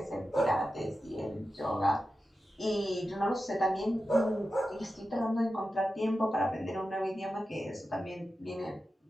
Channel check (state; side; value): normal; both; correlation 0.92